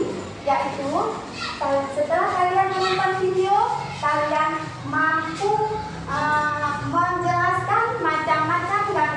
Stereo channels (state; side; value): identical; both; correlation 1.00